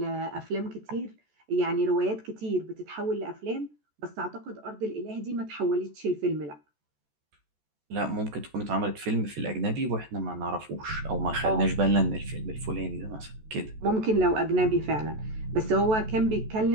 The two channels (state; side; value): late; left; 14 ms